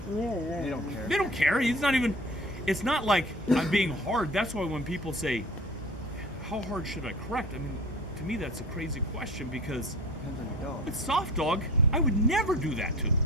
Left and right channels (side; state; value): both; normal; correlation 0.41